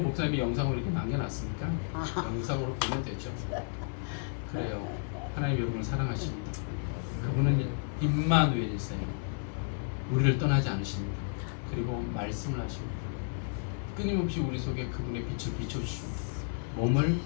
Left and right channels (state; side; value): silent; right; 56 dB below the other